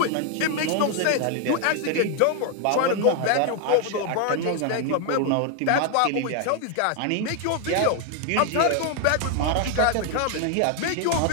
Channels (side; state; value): both; different; correlation 0.00